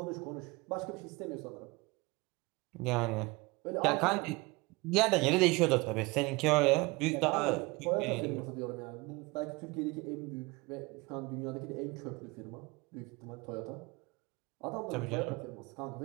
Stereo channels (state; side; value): quieter; left; 24.8 dB